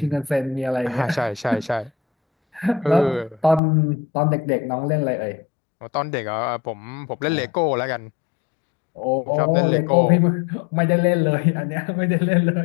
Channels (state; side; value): drops out; right; at 3.6 s